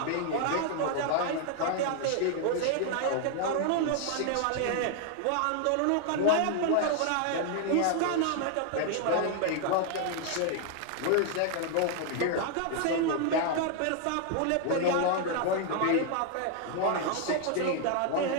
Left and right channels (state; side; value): different; both; correlation 0.00